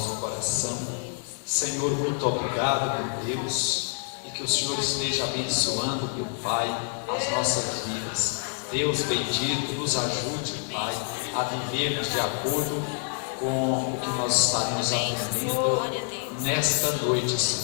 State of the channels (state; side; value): silent; right; 60 dB below the other